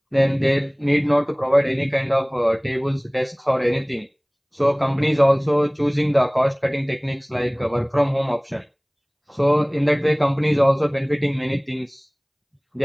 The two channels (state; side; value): identical; both; correlation 1.00